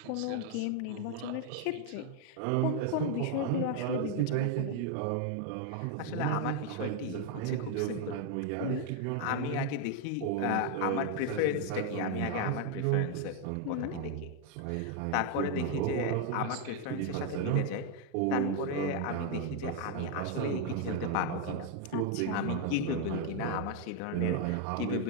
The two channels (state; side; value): different; both; correlation 0.00